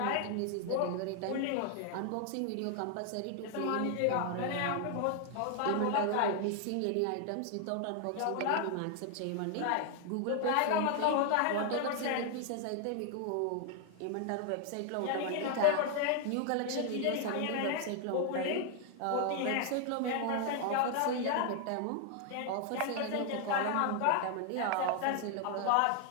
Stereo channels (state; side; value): different; both; correlation 0.00